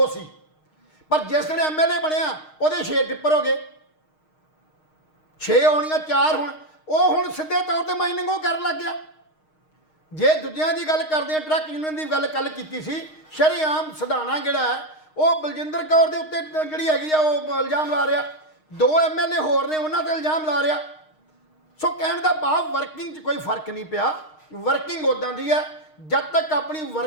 ਸੀ, ਪਰ ਜਿਸ ਵੇਲੇ MLA ਬਣਿਆ ਉਹਦੇ 6 ਟਿੱਪਰ ਹੋ ਗਏ, 6 ਹੋਣੀਆਂ 4 ਹੁਣ, ਉਹ ਹੁਣ ਸਿੱਧੇ ਤੌਰ ਤੇ ਮਾਈਨਿੰਗ ਉਹ ਕਰਨ ਲੱਗ ਗਿਆ। ਜੇ ਦੂਜਿਆਂ ਦੀ ਗੱਲ ਕਰਦੇ ਆ, ਟਰੱਕ ਯੂਨੀਅਨ ਦੀ ਗੱਲ ਕੱਲ ਕੀਤੀ ਸੀ, ਸ਼ਰੇਆਮ ਸਧਾਣਾ ਜਿਹੜਾ ਹੈ ਉਹ ਬਲਜਿੰਦਰ ਕੌਰ ਦੇ ਉੱਤੇ ਜਿਹੜੀ ਹੈਗੀ ਆ ਉਹ ਇਲਜ਼ਾਮ ਲਾ ਰਿਹਾ, 2 MLA ਹੋਰ ਨੇ ਉਹਨਾਂ ਤੇ ਇਲਜ਼ਾਮ ਲਾ ਰਿਹਾ। ਸੋ ਕਹਿਣ ਦਾ ਭਾਵ ਵਰਕਿੰਗ 'ਚ ਕੋਈ ਫਰਕ ਨਹੀਂ ਪਿਆ। ਵਰਕਿੰਗ ਉੱਦਾਂ ਦੀ ਹੈ, ਜਦ ਤੱਕ ਆਪਣੀ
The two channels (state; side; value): late; right; 6.5 ms